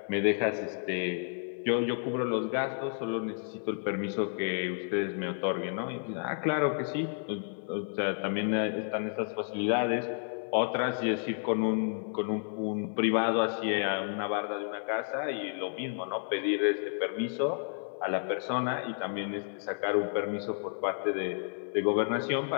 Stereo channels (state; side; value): silent; right; digital silence